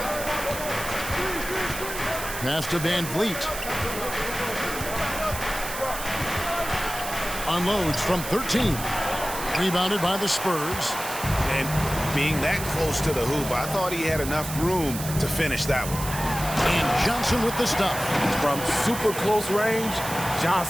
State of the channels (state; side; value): noise; right; hiss, 8 dB below the sound